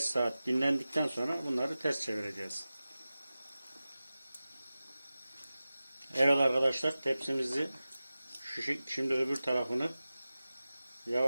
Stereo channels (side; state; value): both; inverted; correlation -0.95